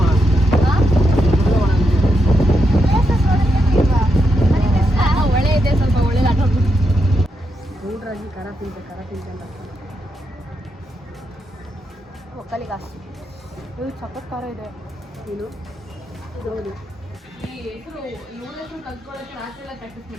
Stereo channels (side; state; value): both; normal; correlation 0.83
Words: ಒಳ್ಳೆ ಇದೆ, ಸ್ವಲ್ಪ ಒಳ್ಳೆ ಆಟೋ ನೋಡ್ರಾಗಿ ಖರ ತಿಂತ ಒಕ್ಕಲಿಗೆ ಅಷ್ಟು ಇದು ಸಖತ್ ಖಾರ ಇದೆ. ನೀನು ಹೌದು ಈ ಹೆಸರು ಇವಳ ಹೆಸರು ಕಲ್ತ್ಕೊಳ್ಳೋಕ್ಕೆ ರಾತ್ರಿ